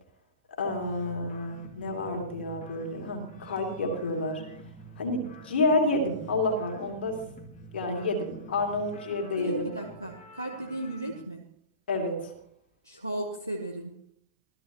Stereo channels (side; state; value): both; inverted; correlation -0.39